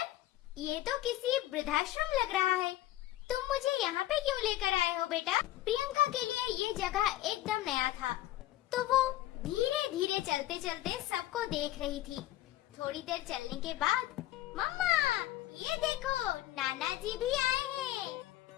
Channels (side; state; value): right; quieter; 14.9 dB